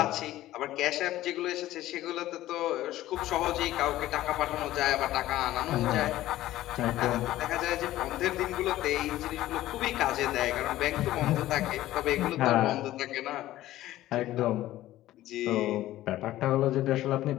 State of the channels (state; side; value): quieter; right; 15.0 dB